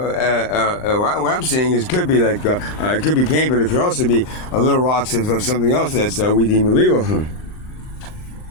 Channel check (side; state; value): right; late; 39 ms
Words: I'm saying is, could be like it could be paint, but it could also be a little rocks of something else that's we deem illegal.